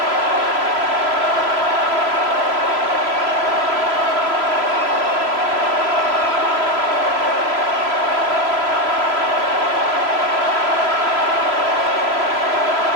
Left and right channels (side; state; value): left; late; 3.0 ms